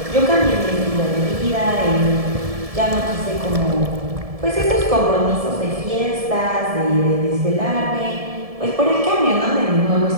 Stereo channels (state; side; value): late; left; 1.7 ms